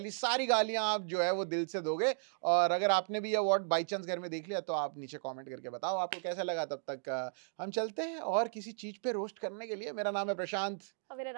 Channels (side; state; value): left; silent; digital silence